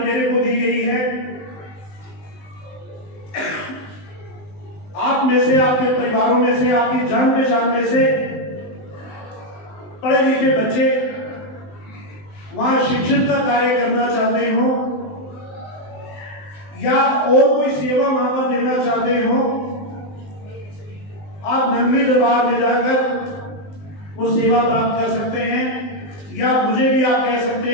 को दी गई है। आप में से, आपके परिवारों में से, आपकी जान पहचान में से पढ़े लिखे बच्चे वहां शिक्षण का कार्य करना चाहते हो या और कोई सेवा वहां पर देना चाहते हो, आप नंगली दरबार में जाकर वो सेवा प्राप्त कर सकते हैं। या मुझे भी आप कह सकते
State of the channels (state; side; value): late; right; 19 ms